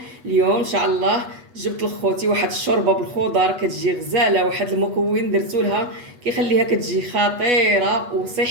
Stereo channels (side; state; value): left; late; 8.2 ms